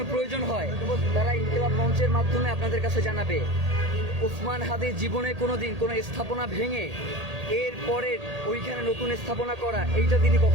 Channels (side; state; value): left; late; 1.8 ms